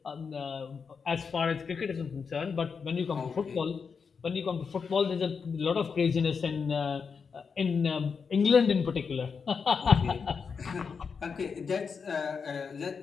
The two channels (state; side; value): quieter; right; 5.7 dB